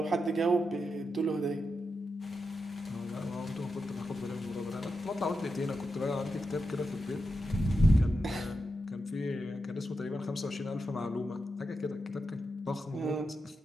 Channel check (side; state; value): both; normal; correlation 0.87